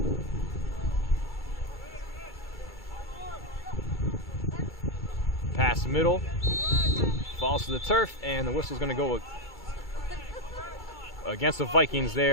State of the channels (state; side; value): late; right; 2.3 ms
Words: Pass middle, falls to the turf, and the whistle's going to go against the Vikings